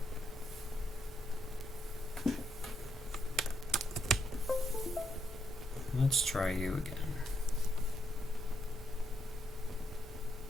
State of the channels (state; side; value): normal; both; correlation 0.77